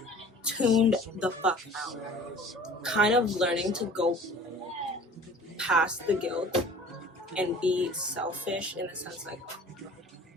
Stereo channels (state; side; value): normal; both; correlation 0.45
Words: tuned the fuck out. Kind of learning to go past the guilt and be selfish in the sense like,